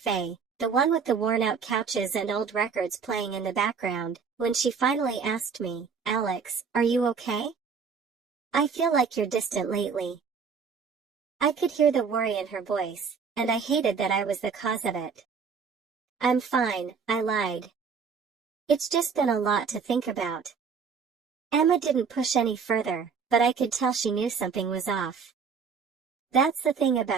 the one with the worn-out couches and old records playing in the background, when she finally asked me, "Alex, are you okay? I feel like you're distant lately." I could hear the worry in her voice, and I hated that I was the cause of it. "I'm fine," I lied. "It's just been a lot to think about." Emma didn't push any further, but I could tell she knew something was off. That's the thing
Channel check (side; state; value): left; quieter; 5.9 dB